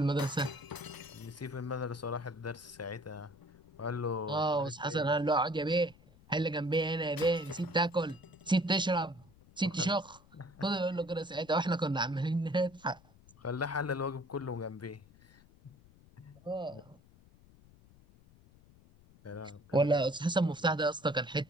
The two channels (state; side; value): noise; left; rumble, 26 dB below the sound